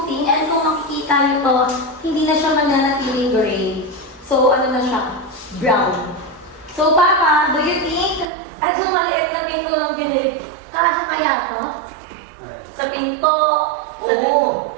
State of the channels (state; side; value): drops out; left; at 8.2 s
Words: And kung makikita niyo to, hindi na siya mananatiling gray. So, ano na siya? Brown. So, Papa, do you think, yung maliit na pintura ng binili, kasya kaya to? Sa pinto? Oo.